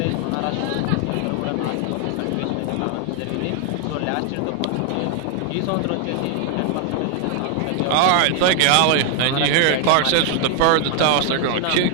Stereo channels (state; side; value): different; both; correlation 0.01